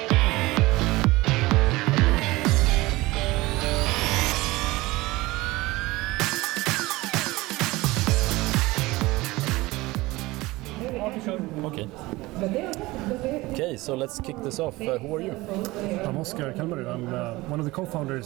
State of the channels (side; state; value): left; quieter; 20.4 dB